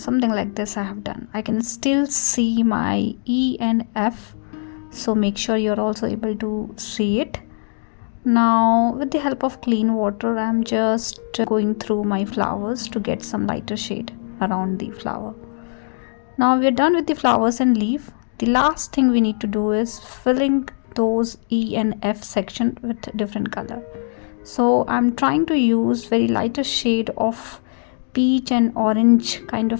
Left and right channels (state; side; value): silent; right; digital silence